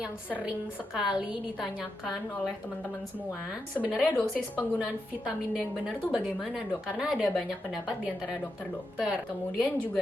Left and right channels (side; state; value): both; normal; correlation 0.86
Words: sering sekali ditanyakan oleh teman-teman semua. Sebenarnya dosis penggunaan vitamin D yang benar tuh bagaimana dok? Karena ada banyak pendapat di antara dokter-dokter. Kemudian